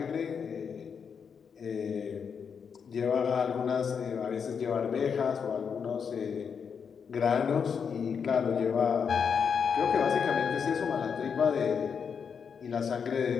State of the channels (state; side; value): quieter; right; 6.6 dB